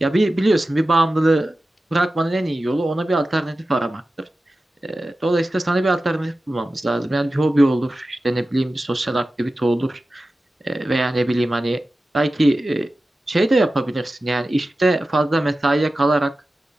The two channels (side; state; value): both; normal; correlation 0.94